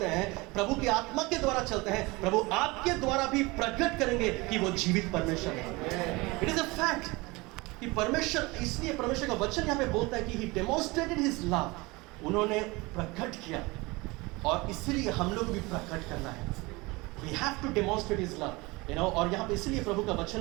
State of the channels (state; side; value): quieter; left; 23.7 dB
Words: हैं, प्रभु की आत्मा के द्वारा चलते हैं, प्रभु आपके द्वारा भी प्रकट करेंगे कि वो जीवित परमेश्वर है। इट इज अ फैक्ट कि परमेश्वर, इसलिए परमेश्वर का वचन यहाँ पे बोलता है कि ही डेमोन्स्ट्रेटेड हिज लव, उन्होंने प्रकट किया, और इसलिए हम लोग भी प्रकट करना है। We have to demonstrate his love, you know. और यहाँ पे इसलिए प्रभु का